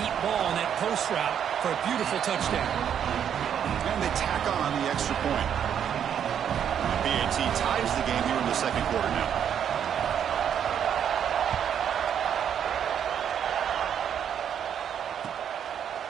ball on that post route for a beautiful touchdown. And they tack on the extra point. BAT ties the game here in the second quarter now.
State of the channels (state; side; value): quieter; left; 8.8 dB